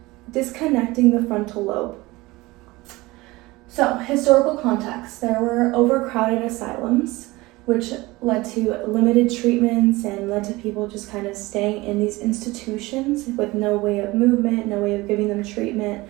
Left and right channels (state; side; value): quieter; left; 21.0 dB